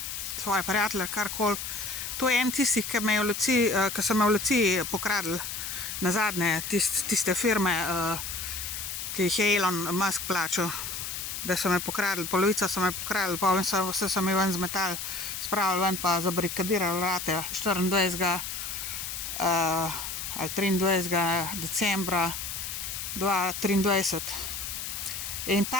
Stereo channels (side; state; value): left; noise; hiss, 5 dB below the sound